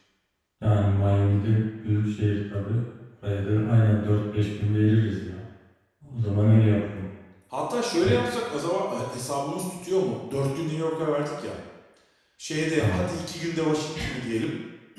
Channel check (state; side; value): identical; both; correlation 1.00